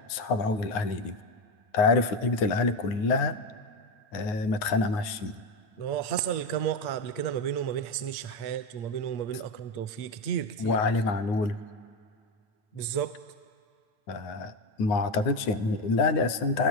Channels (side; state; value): right; late; 9.6 ms